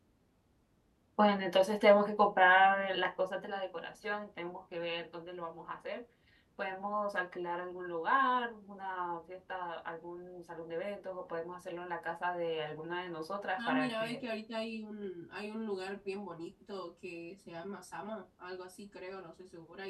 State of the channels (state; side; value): identical; both; correlation 1.00